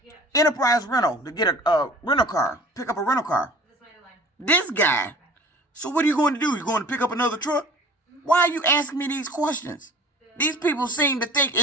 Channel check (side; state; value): both; normal; correlation 0.45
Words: Enterprise Rental to get a rental car. Pick up a rental car. This guy. So what are you going to do? You going to pick up another truck? Why are you asking me these questions? These people seem to think